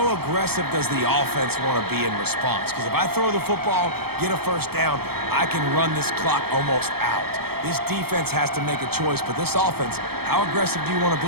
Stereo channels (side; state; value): left; late; 0.96 ms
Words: aggressive does the offense want to be in response? Because if I throw the football, get a first down, I can run this clock almost out. This defense has to make a choice, but this offense, how aggressive do you want to